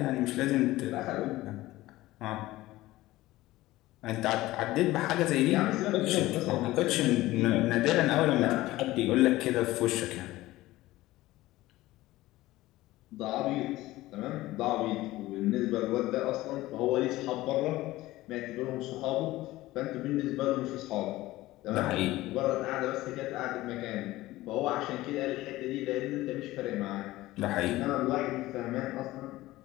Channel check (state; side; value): quieter; right; 17.4 dB